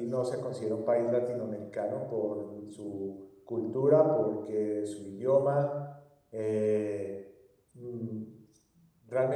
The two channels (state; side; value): identical; both; correlation 1.00